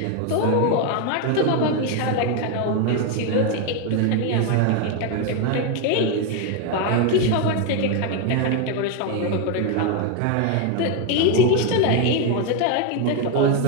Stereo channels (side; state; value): both; different; correlation 0.01